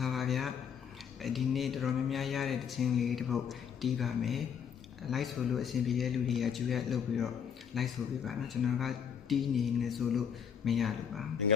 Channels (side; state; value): right; quieter; 7.7 dB